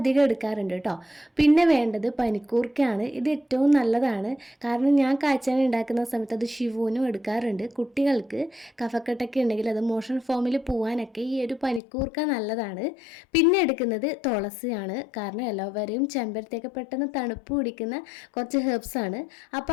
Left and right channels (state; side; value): drops out; right; at 11.8 s